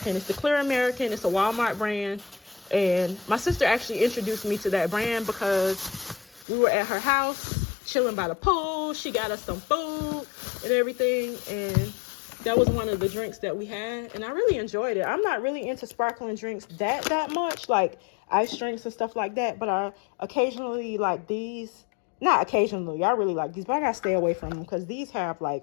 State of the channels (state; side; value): drops out; right; at 6.5 s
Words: It's the Clear American. It's a Walmart brand, and my sister actually introduced me to that brand because we were at her house chilling by the pool. She got us some food and everything, and that was one of the drinks that we had, and I really enjoyed it. I'm not really into sparkling drinks that much, like ice drinks and stuff like that, but I occasionally like these. Not occasionally, I really like these, but I gotta stay away from them because these have like